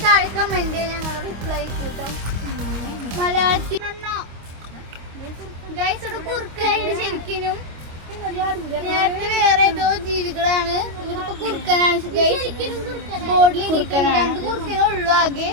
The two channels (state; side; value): late; left; 25 ms